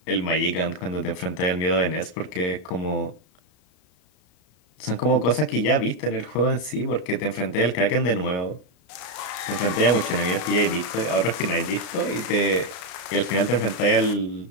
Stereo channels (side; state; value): right; late; 33 ms